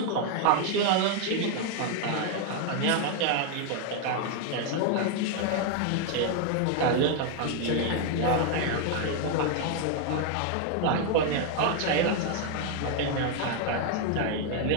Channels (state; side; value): different; both; correlation 0.01